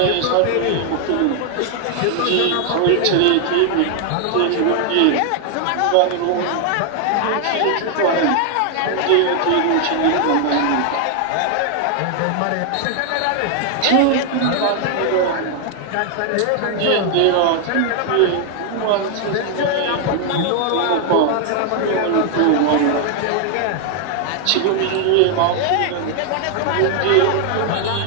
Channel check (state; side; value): different; both; correlation 0.00